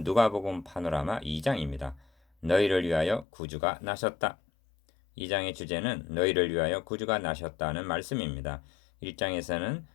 누가복음 파노라마 2장입니다. 너희를 위하여 구주가 나셨다. 2장의 주제는 너희를 위하여 구주가 나셨다는 말씀입니다. 1장에서는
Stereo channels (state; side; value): drops out; right; at 3.2 s